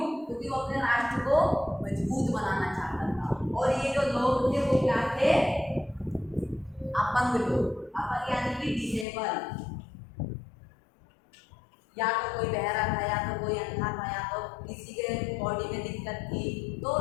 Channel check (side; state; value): right; drops out; at 9.1 s